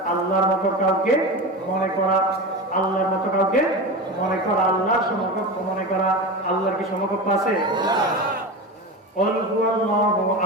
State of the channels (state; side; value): normal; both; correlation 0.25